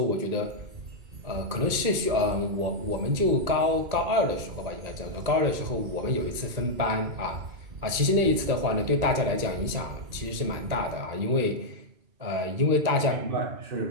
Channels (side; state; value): left; late; 1.9 ms